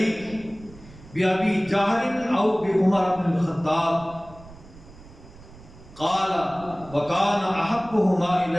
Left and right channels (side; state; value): right; noise; rumble, 20 dB below the sound